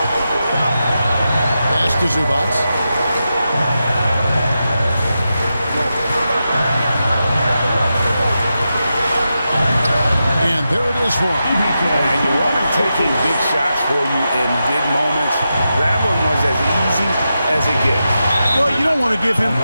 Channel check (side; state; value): both; inverted; correlation -0.89